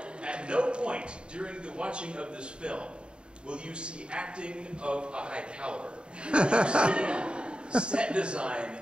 At no point during the watching of this film will you see acting of a high caliber. Will you see set design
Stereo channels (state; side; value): late; left; 0.052 ms